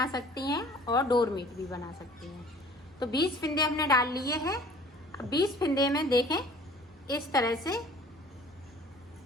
सकती हैं और डोर मैट भी बना सकती हैं। तो 20 फिंदे हमने डाल लिए हैं। 20 फिंदे में देखें इस तरह से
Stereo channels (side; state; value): both; normal; correlation 0.50